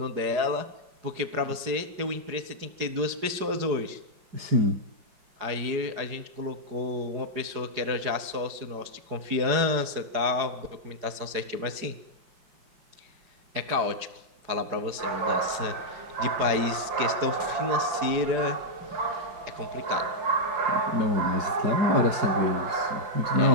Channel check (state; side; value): late; left; 4.9 ms